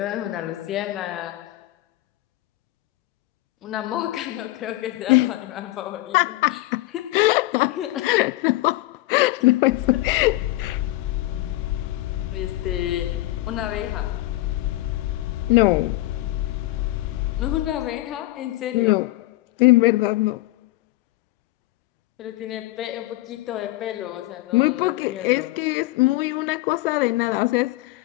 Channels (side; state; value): right; quieter; 17.7 dB